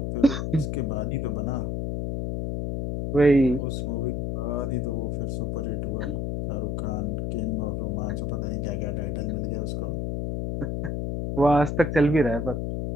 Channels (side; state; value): left; noise; hum, 2 dB below the sound